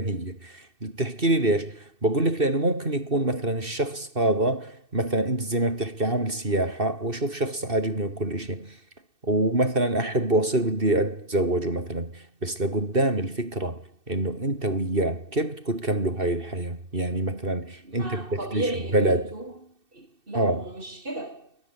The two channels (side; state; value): left; late; 2.6 ms